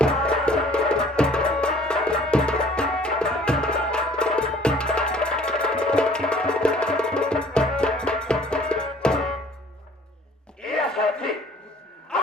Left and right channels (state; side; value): normal; both; correlation 0.54